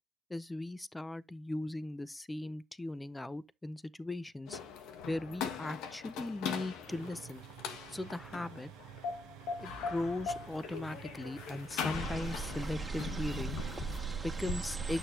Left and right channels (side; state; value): both; normal; correlation 0.79